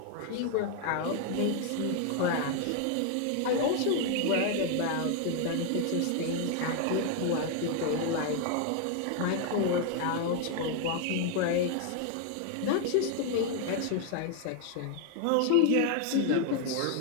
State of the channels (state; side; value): different; both; correlation 0.00